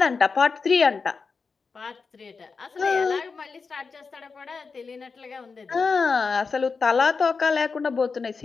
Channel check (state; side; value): quieter; right; 4.8 dB